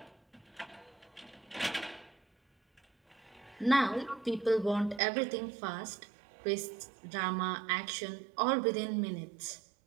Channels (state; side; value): drops out; left; at 5.0 s